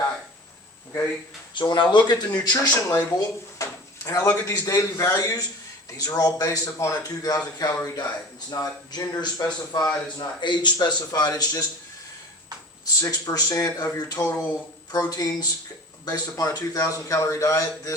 Okay? So when I look at the nutrition label and I look at these daily values, these are all based upon a 2,000 calorie diet. It's not gender specified, it's not age specified, it's just 6% of your total proteins based upon a 2,000 calorie diet.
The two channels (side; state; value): both; normal; correlation 0.39